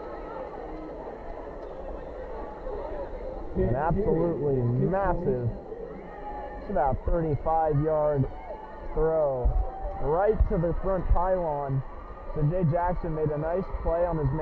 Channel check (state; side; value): identical; both; correlation 1.00